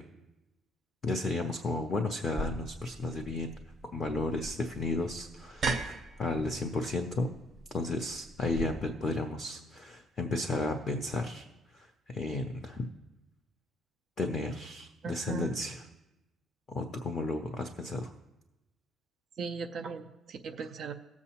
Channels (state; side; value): normal; both; correlation 0.65